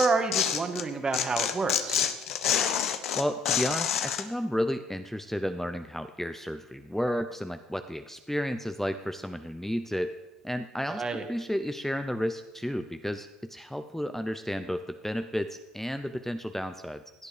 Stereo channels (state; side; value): normal; both; correlation 0.74